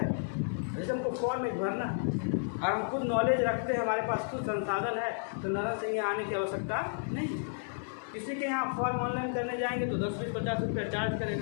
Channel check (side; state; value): right; silent; digital silence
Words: जैसे हमको फॉर्म में भरना और हम खुद नॉलेज रखते हैं, हमारे पास खुद संसाधन है, तो नगर से यहाँ आने की आवश्यकता नहीं। किसी के यहाँ फॉर्म ऑनलाइन करने जाएंगे तो 10-50 रुपया चार्ज